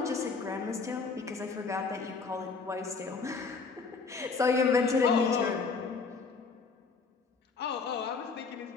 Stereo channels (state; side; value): quieter; right; 4.7 dB